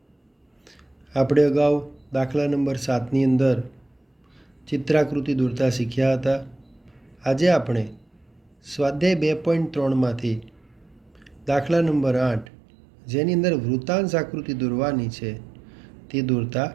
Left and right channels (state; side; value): drops out; left; at 12.5 s